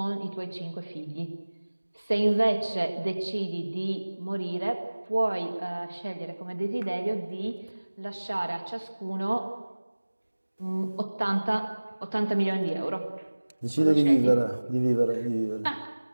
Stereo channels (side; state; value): both; inverted; correlation -1.00